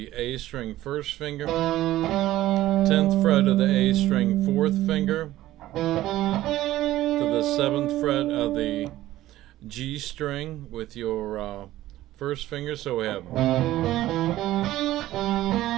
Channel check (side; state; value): left; quieter; 15.1 dB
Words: A string, 1st finger. 10th fret of the A string, 4th finger. To the 7th fret of the G string with your 1st finger. So we have